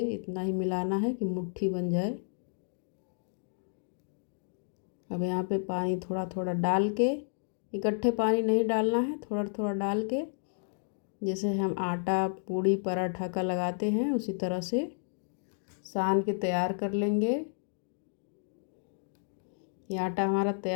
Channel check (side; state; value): right; silent; digital silence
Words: इतना ही मिलाना है कि मुट्ठी बन जाए। अब यहाँ पे पानी थोड़ा थोड़ा डाल के, इकट्ठे पानी नहीं डालना है, थोड़ा थोड़ा डाल के, जैसे हम आटा पूड़ी पराठा का लगाते हैं उसी तरह से सान के तैयार कर लेंगे। ये आटा हमारा